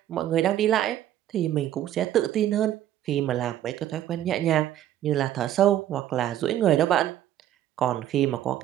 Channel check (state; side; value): quieter; left; 12.1 dB